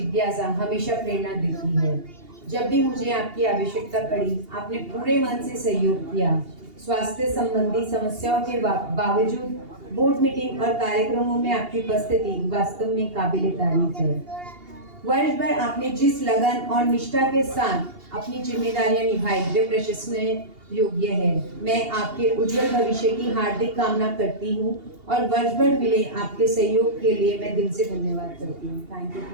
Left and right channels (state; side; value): late; left; 2.8 ms